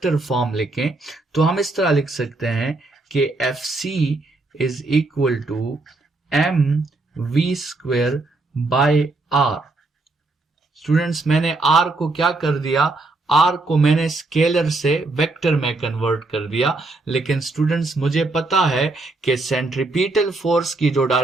फॉर्म लिखें तो हम इस तरह लिख सकते हैं कि Fc is equal to mv²/r। Students मैंने r को क्या कर दिया? r को मैंने स्केलर से वेक्टर में कन्वर्ट कर दिया, लेकिन स्टूडेंट्स मुझे पता है कि सेंट्रीपिटल फोर्स की जो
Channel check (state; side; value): quieter; left; 3.2 dB